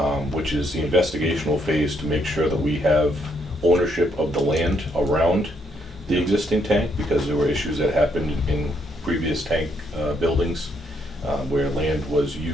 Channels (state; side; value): normal; both; correlation 0.73